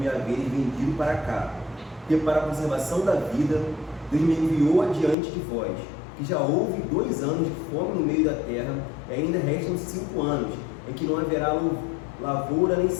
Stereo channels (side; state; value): right; drops out; at 5.2 s